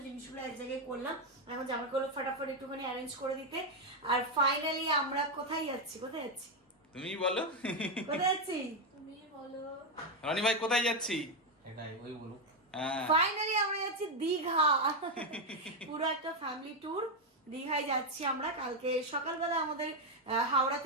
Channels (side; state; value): both; normal; correlation 0.05